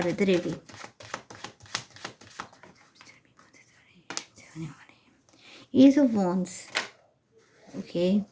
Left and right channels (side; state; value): both; identical; correlation 1.00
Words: with the reading. Ace of wands. Okay,